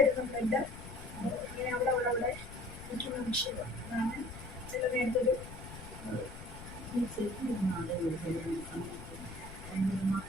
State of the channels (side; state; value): left; noise; rumble, 13 dB below the sound